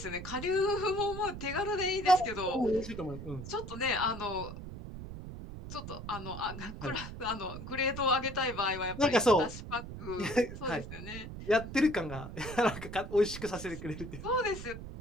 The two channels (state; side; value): noise; right; rumble, 10 dB below the sound